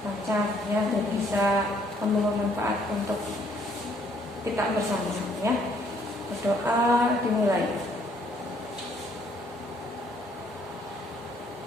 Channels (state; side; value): normal; both; correlation 0.65